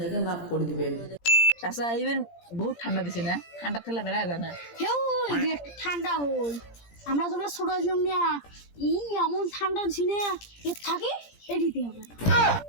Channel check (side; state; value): right; late; 17 ms